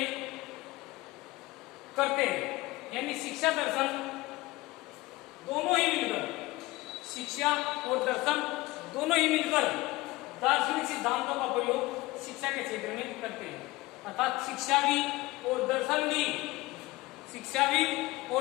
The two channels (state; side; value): quieter; right; 20.3 dB